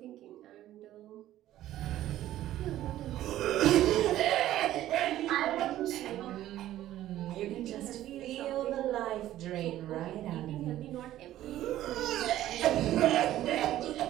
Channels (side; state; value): left; quieter; 13.5 dB